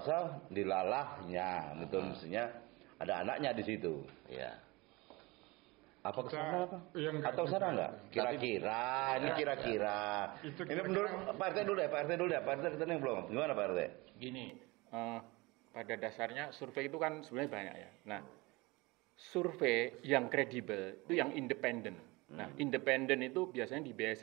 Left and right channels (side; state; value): left; quieter; 23.7 dB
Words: dilalahnya, betul, mestinya ada anaknya di situ. Ya. Apa kesana apa? Ya, Atau sana enggak? Kira-kira, ini kira-kira. Ini menurut Pak RT dulu ya, Pak RT dulu ya. Pak RT kita yang belum. Gimana Pak RT? Gini, pada dasarnya survei itu kan sebenarnya banyak ya. Nah, survei yang kredibel itu yang independen. Nah, independen itu biasanya dibiayai